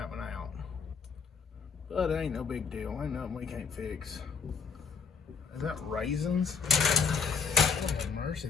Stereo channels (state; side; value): quieter; right; 5.8 dB